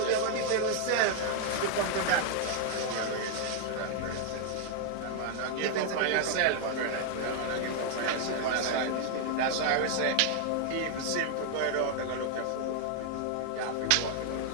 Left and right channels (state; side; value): different; both; correlation 0.00